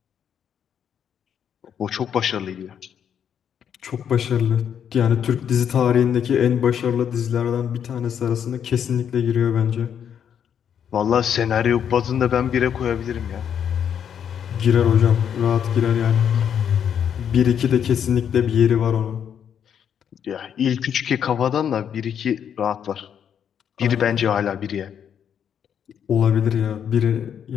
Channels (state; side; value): quieter; right; 8.5 dB